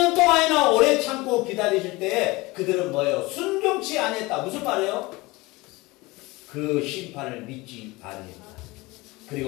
동안이나 오래 참고 기다리실 때에 그들은 뭐예요? 순종치 아니했다. 무슨 말이에요? 그 심판을 믿지 아니했다.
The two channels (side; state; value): right; quieter; 22.3 dB